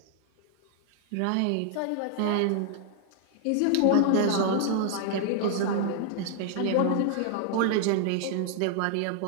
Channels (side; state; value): both; different; correlation -0.01